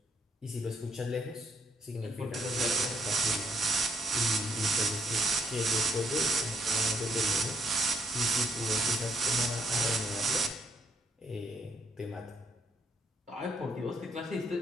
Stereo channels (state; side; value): normal; both; correlation 0.72